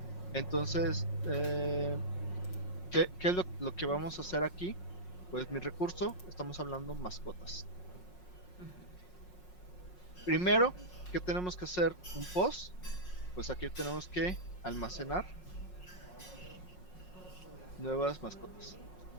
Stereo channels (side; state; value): right; late; 5.5 ms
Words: Entonces, ¿Qué es lo que vamos a hacer aquí? Pues mi recurso, estamos hablando mascotas. Primero, ¿qué tenemos que hacer? Un post. Pues aquí tenemos que almacenar nuevas mascotas,